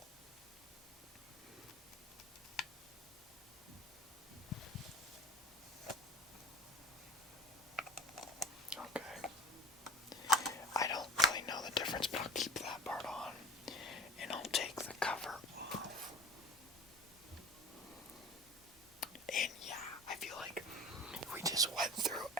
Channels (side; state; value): both; normal; correlation 0.40